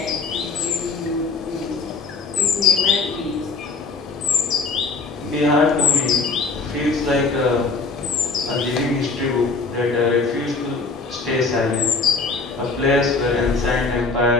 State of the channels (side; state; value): right; quieter; 4.1 dB